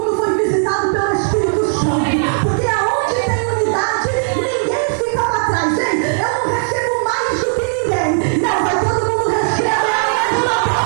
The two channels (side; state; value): left; silent; digital silence